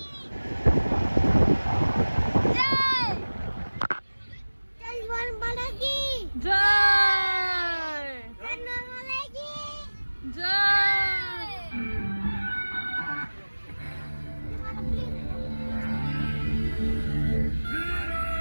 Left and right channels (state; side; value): inverted; both; correlation -1.00